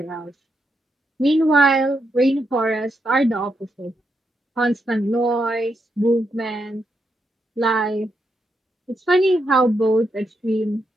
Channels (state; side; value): normal; both; correlation 0.82